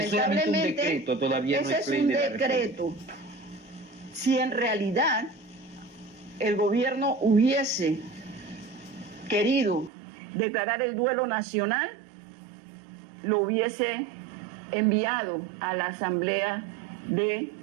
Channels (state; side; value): drops out; left; at 9.9 s